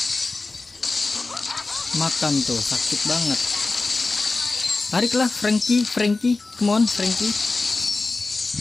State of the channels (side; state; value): right; quieter; 3.5 dB